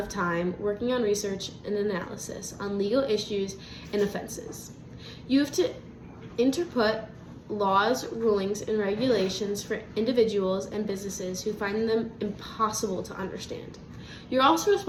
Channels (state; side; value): identical; both; correlation 1.00